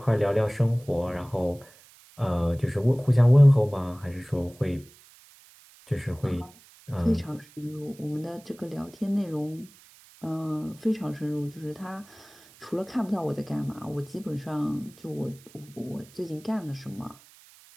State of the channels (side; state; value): right; noise; hiss, 25 dB below the sound